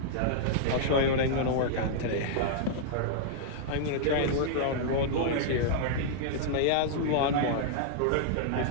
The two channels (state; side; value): different; both; correlation -0.01